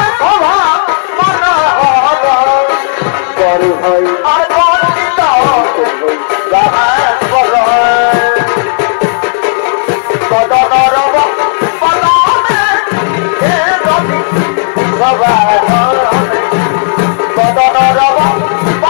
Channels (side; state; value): right; silent; digital silence